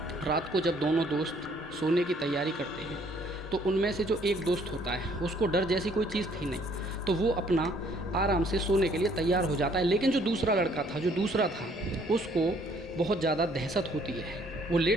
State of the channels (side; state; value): both; normal; correlation 0.62